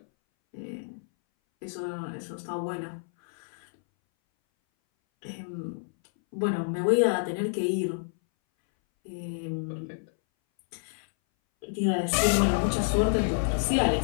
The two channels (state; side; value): silent; right; 59 dB below the other